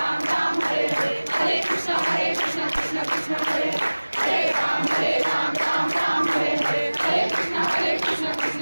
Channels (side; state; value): both; inverted; correlation -1.00